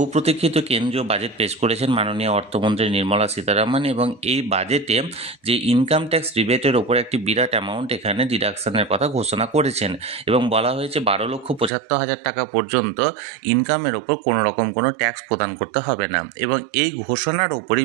প্রতীক্ষিত কেন্দ্রীয় বাজেট পেশ করেছেন মাননীয় অর্থমন্ত্রী নির্মলা সীতারামন, এবং এই বাজেটে যে ইনকাম ট্যাক্স রিবেটের ওপর একটি বিরাট অ্যামাউন্ট এখানে ডিডাকশনের কথা ঘোষণা করেছেন, এবং বলা হয়েছে 12,75,000 টাকা পর্যন্ত ইনকামের ওপর কোনো রকম কোনো ট্যাক্স প্রদান করতে হবে না। এবং এই ঘোষণার ওপরই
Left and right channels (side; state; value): left; drops out; at 11.7 s